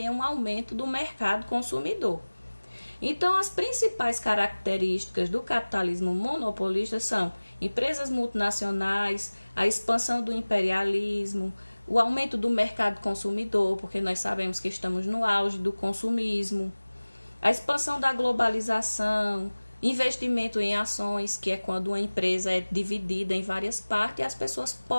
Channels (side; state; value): both; inverted; correlation -1.00